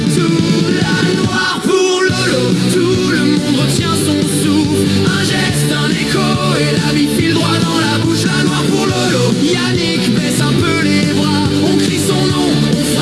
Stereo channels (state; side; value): identical; both; correlation 1.00